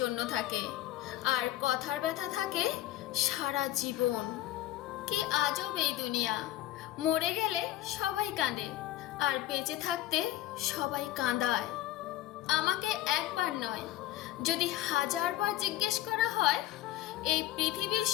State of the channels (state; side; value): quieter; right; 14.2 dB